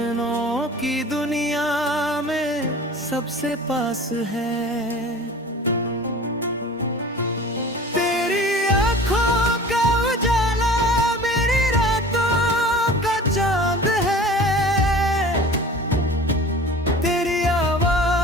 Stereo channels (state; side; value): normal; both; correlation 0.41